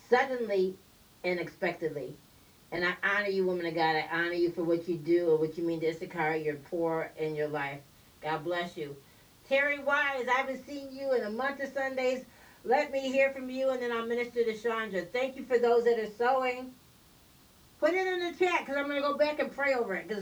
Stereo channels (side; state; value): both; identical; correlation 1.00